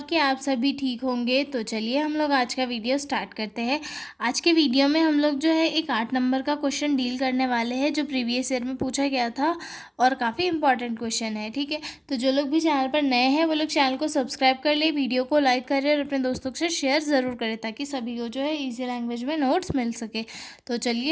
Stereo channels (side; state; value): both; identical; correlation 1.00